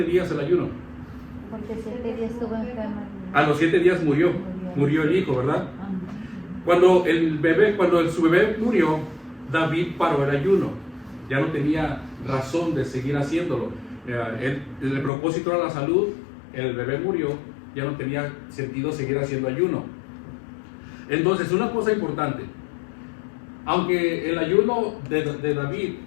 días el ayuno? Porque 7 días estuvo enferma. A los 7 días murió el hijo, ¿verdad? Cuando su bebé murió, David paró el ayuno. Ya no tenía razón de seguir haciéndolo. El propósito era la salud, el bebé murió, ya no tenía sentido seguir haciendo ayuno. Entonces, una cosa importante, aunque el ayuno de David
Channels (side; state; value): right; drops out; at 15.1 s